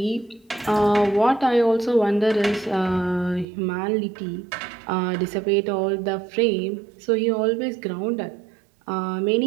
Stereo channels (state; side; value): drops out; left; at 3.5 s